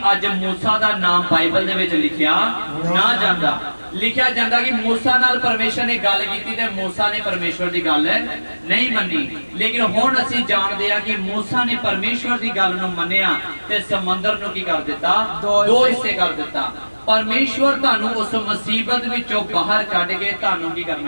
ਅੱਜ ਮੂਸਾ ਦਾ ਨਾਮ ਬਾਈਬਲ ਦੇ ਵਿੱਚ ਲਿਖਿਆ ਨਾ ਜਾਂਦਾ। ਲਿਖਿਆ ਜਾਂਦਾ ਕਿ ਮੂਸਾ ਨਾਲ ਪਰਮੇਸ਼ਰ ਨੇ ਗੱਲ ਕੀਤੀ ਤੇ ਮੂਸਾ ਨੇ ਪਰਮੇਸ਼ਵਰ ਦੀ ਗੱਲ ਨਹੀਂ ਮੰਨੀ। ਲੇਕਿਨ ਹੁਣ ਅਸੀਂ ਜਾਣਦੇ ਹਾਂ ਕਿ ਮੂਸਾ ਨੇ ਪਰਮੇਸ਼ਵਰ ਦੀ ਗੱਲ ਨੂੰ ਮੰਨਿਆ ਤੇ ਸਮੁੰਦਰ ਨੂੰ ਕੀ ਕਰ ਦਿੱਤਾ, 2 ਹਿੱਸੇ ਕਰ ਦਿੱਤਾ। ਪਰਮੇਸ਼ਵਰ ਤੁਹਾਨੂੰ ਉਸ ਮੁਸੀਬਤ ਵਿੱਚੋਂ ਬਾਹਰ ਕੱਢ ਕੇ ਤੁਹਾਨੂੰ ਕੀ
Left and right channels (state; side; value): inverted; both; correlation -1.00